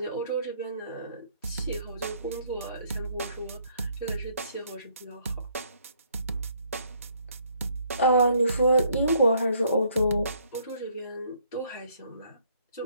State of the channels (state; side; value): inverted; both; correlation -0.66